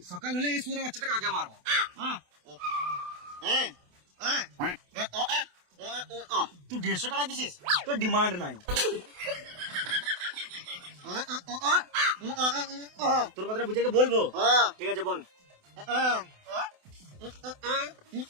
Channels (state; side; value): late; left; 28 ms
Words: সকাল হলে এই সুরে বাচ্চাটাকে আগে মারবো। তুই 150 টাকা দিছিস, তোর ডিমান্ড নাই। তোর কথাটা বুঝে বলবো, ঠিক আছে বল।